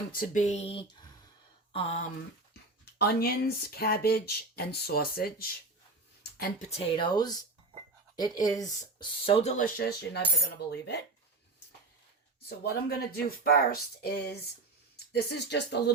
to be onions, cabbage, and sausage, and potatoes. It is so delicious, you're never going to believe it. So what I'm going to do first is, this is just a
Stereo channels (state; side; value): quieter; left; 3.1 dB